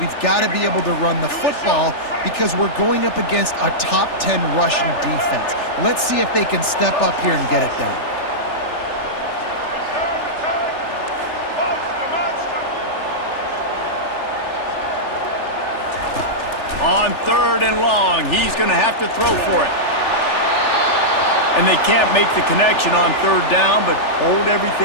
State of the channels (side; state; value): right; late; 3.4 ms